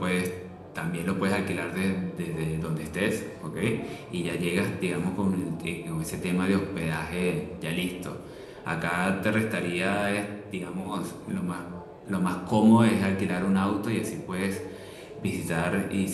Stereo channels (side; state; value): both; identical; correlation 1.00